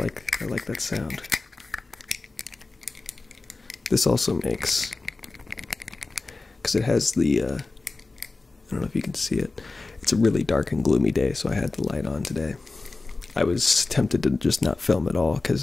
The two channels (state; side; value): quieter; right; 3.5 dB